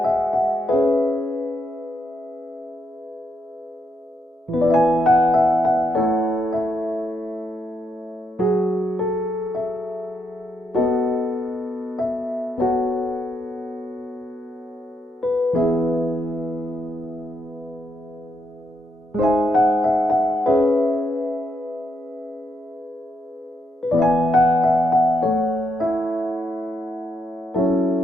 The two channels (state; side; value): normal; both; correlation 0.79